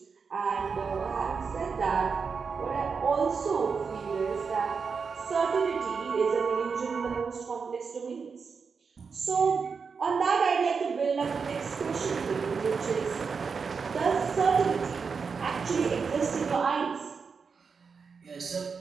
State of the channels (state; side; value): quieter; left; 5.5 dB